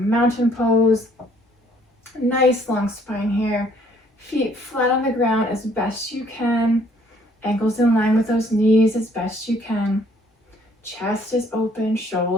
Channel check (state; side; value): normal; both; correlation 0.63